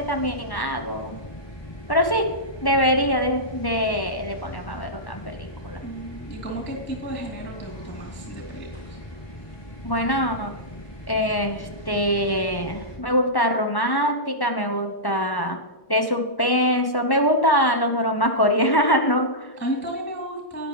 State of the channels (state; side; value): late; right; 1.1 ms